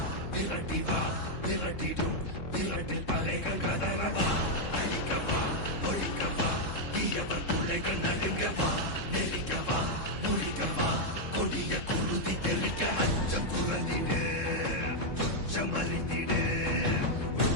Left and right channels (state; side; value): late; right; 3.7 ms